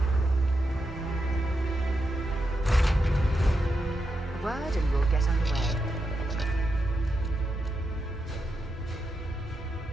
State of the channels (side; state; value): both; normal; correlation 0.86